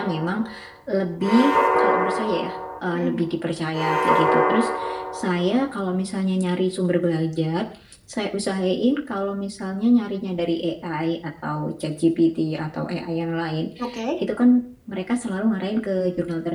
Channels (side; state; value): both; identical; correlation 1.00